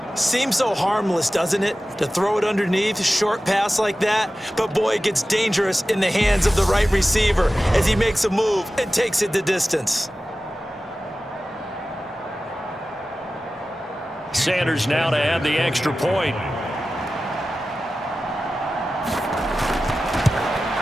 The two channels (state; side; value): normal; both; correlation 0.95